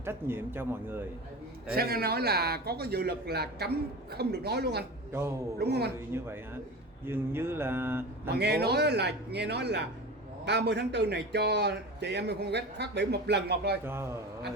trách nhiệm cho mọi người. Xem anh nói là có cái dự luật là cấm không được nói luôn anh. Đúng không anh? Như vậy hả? Dường như là mà nghe nói là 30 tháng 4 này cho chị Amy Phan West phát biểu một lần một thôi. Anh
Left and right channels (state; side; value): normal; both; correlation 0.30